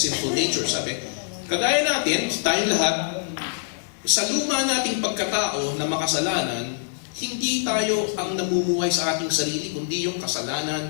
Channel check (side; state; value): right; silent; digital silence